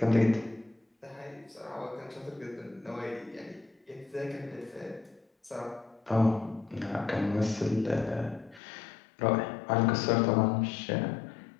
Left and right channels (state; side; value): drops out; right; at 8.6 s